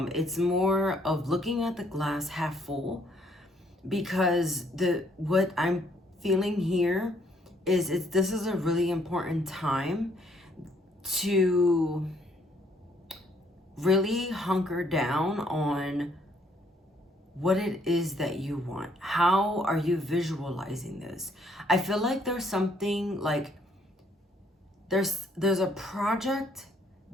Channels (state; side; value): normal; both; correlation 0.67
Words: It's more of looking at the glass half full, because what I'm feeling here is this is a really important time to really hunker down on what it is that you want. How are you visualizing this? I feel like there's something like there's a project